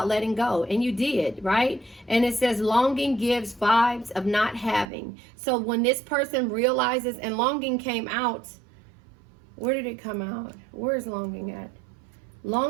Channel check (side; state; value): left; drops out; at 4.9 s